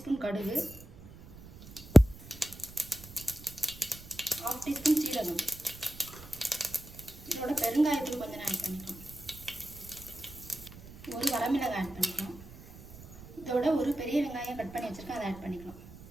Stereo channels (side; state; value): right; noise; rumble, 17 dB below the sound